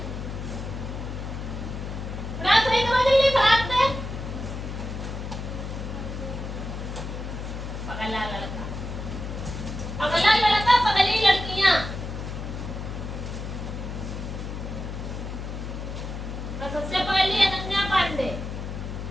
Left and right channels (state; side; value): noise; left; hum, 6 dB below the sound